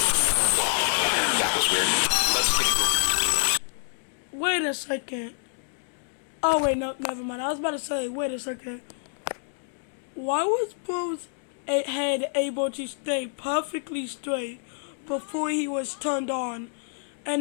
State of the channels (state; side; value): silent; right; digital silence